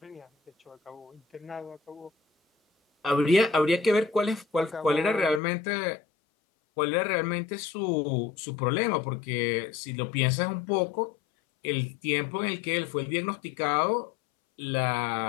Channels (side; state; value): right; drops out; at 5.4 s